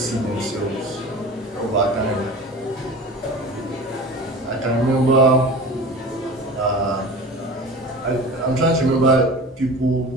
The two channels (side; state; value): both; normal; correlation 0.37